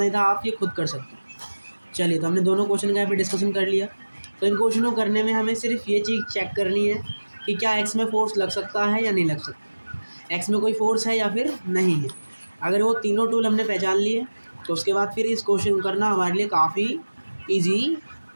ही था, आप ये खुद कर सकते हो। चलिए, तो हमने दोनों क्वेश्चन का यहाँ पे डिस्कशन कर लिया। तो इन क्वेश्चनों को करने में हमें सिर्फ ये चीज़ चेक करनी है कि क्या एक्स में फोर्स लग सकता है या नहीं लग सकता, एक्स में कोई फोर्स है या फिर नहीं है। अगर वो तीनों टूल हमने पहचान लिए तो उसके बाद फिर इस क्वेश्चन करना हमारे लिए काफ़ी ईजी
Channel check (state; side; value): inverted; both; correlation -1.00